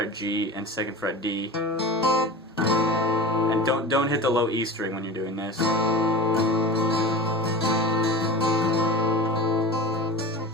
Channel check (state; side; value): normal; both; correlation 0.32